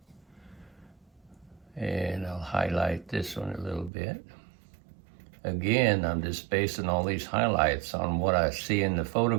And I'll highlight this one a little bit. Again, I'm just basing all these highlights on what I see in the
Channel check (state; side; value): drops out; left; at 3.9 s